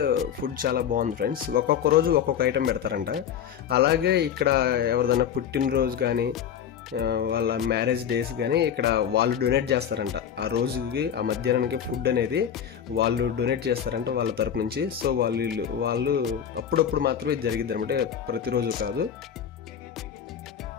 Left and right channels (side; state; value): right; quieter; 8.8 dB